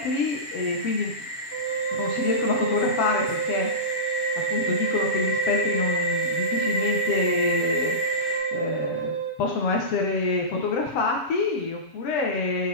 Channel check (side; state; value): right; late; 7.2 ms